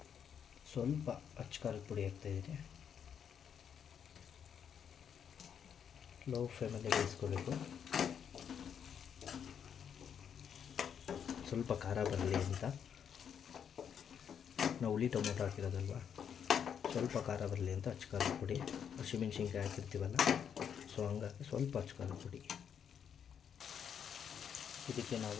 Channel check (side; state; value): right; quieter; 8.0 dB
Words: ಸ್ವಲ್ಪ ಅಚ್ಚ ಖಾರದ ಪುಡಿ ಹಾಕ್ತಾಯಿದ್ದೀನಿ. ಲೋ ಫ್ಲೇಮಲ್ಲೇ ಬೇಯಿಸ್ಕೋಬೇಕು. ಸ್ವಲ್ಪ ಖಾರ ಬರಲಿ ಅಂತ ನಾವು ಹುಳಿ ಟೊಮೊಟೊ ಹಾಕಿರೋದಲ್ವ, ಸ್ವಲ್ಪ ಖಾರ ಬರಲಿ ಅಂತ ಅಚ್ಚ ಖಾರದ ಪುಡಿ. ಹಸಿಮೆಣ್ಸಿನ್ಕಾಯಿ ಹಾಕಿರ್ತೀವಲ್ಲ, ಸೊ ಹಂಗಾಗಿ ಸ್ವಲ್ಪ ಅಚ್ಚ ಖಾರದ ಪುಡಿ. ಇದಕ್ಕೆ